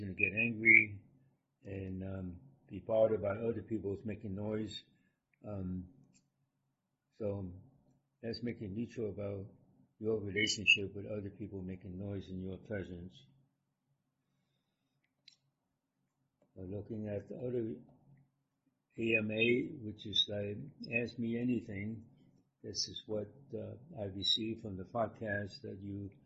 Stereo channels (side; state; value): both; identical; correlation 1.00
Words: to get angry and be bothered by other people's making noise. So let's make it neutral about your relationship with other people making noise in your presence. Looking at the other AMA, which is like Ask Me Anything. This is what I received from the podcast that you